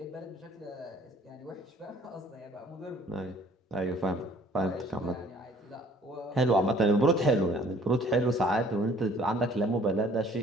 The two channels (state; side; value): normal; both; correlation 0.56